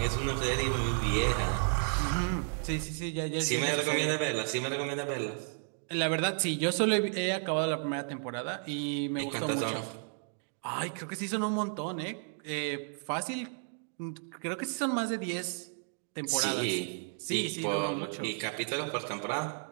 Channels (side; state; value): left; silent; 56 dB below the other